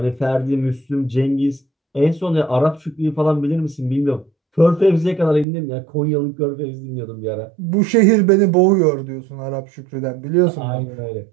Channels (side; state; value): left; drops out; at 5.5 s